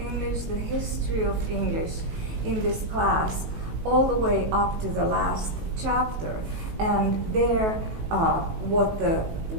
the history of English in this class, all the way up to the last chapter. And there, what the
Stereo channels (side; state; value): left; late; 19 ms